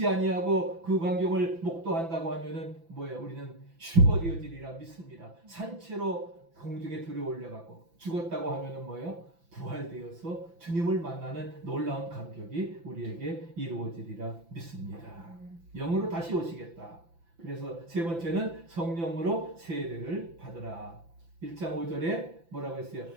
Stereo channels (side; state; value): left; late; 5.9 ms